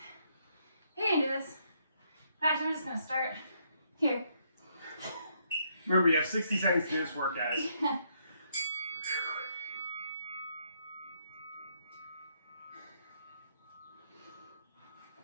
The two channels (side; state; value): both; inverted; correlation -0.73